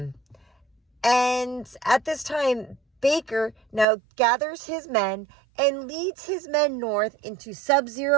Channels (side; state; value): left; drops out; at 3.9 s